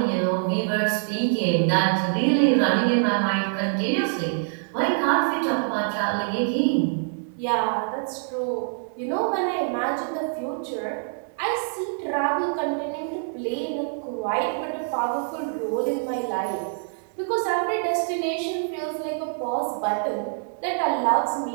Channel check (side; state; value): left; silent; 58 dB below the other